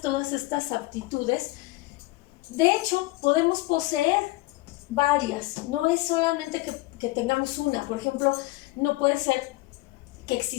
estas aptitudes, de hecho, podemos poseer varias, no es solamente que tengamos una. Por ejemplo, no puede ser que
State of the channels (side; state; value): right; quieter; 21.1 dB